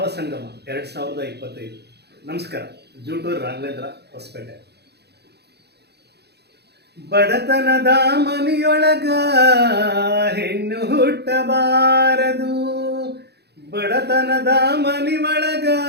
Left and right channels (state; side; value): late; left; 0.48 ms